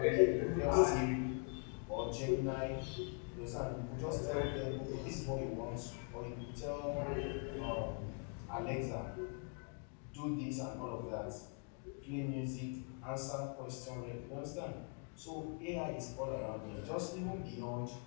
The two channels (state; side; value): quieter; right; 39.4 dB